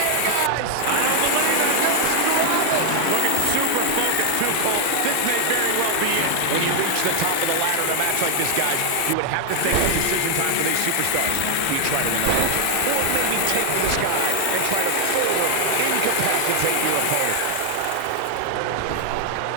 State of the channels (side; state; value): both; different; correlation 0.00